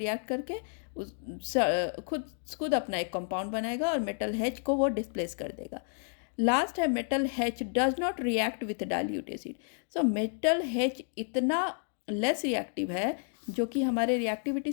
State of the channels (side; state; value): right; silent; 57 dB below the other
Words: करके खुद अपना एक कंपाउंड बनाएगा और मेटल H को वो डिस्प्लेस कर देगा। लास्ट है metal H does not react with dilute acid. So metal H इतना लेस रिएक्टिव है, जो कि हमारे रिएक्टिविटी